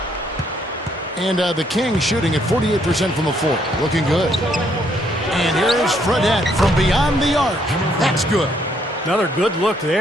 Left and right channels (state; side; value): normal; both; correlation 0.70